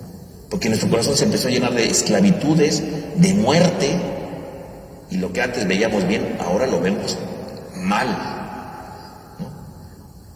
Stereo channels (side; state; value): both; identical; correlation 1.00